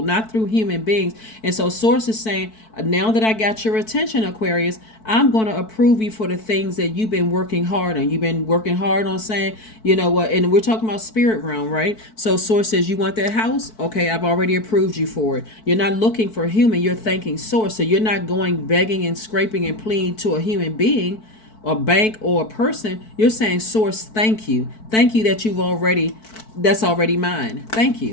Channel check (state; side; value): late; right; 4.6 ms